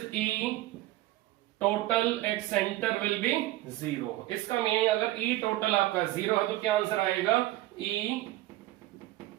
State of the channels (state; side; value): quieter; left; 16.6 dB